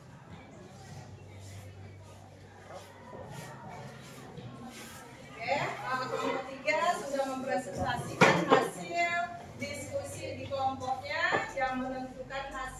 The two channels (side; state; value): both; identical; correlation 1.00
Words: Oke, kelompok 3 sudah mempresentasikan hasil diskusi di kelompoknya yang menentukan